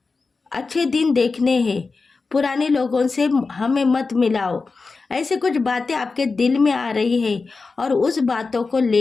अच्छे दिन देखने हैं। पुराने लोगों से हमें मत मिलाओ। ऐसे कुछ बातें आपके दिल में आ रही है और उस बातों को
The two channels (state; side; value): quieter; right; 4.2 dB